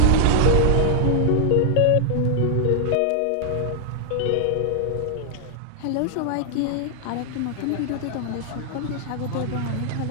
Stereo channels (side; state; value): both; different; correlation 0.00